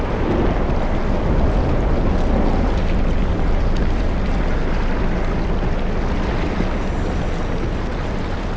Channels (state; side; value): identical; both; correlation 1.00